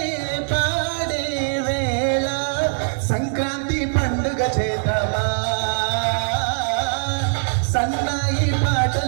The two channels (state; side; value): silent; left; 65 dB below the other